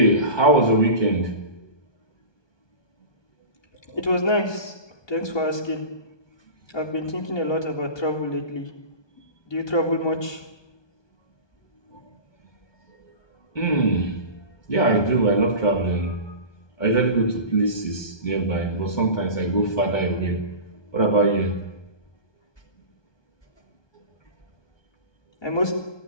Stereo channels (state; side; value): late; right; 1.2 ms